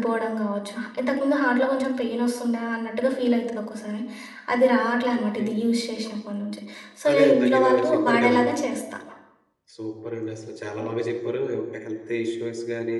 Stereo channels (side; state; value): both; identical; correlation 1.00